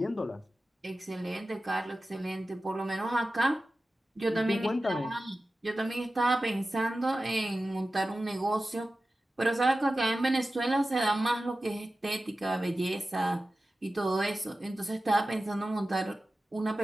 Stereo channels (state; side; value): normal; both; correlation 0.95